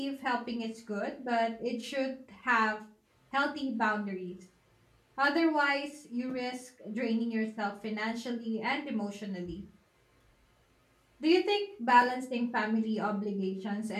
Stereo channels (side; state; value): both; identical; correlation 1.00